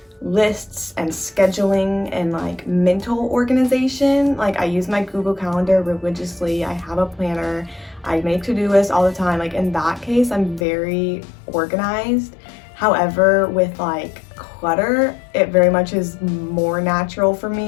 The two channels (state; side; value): drops out; right; at 10.7 s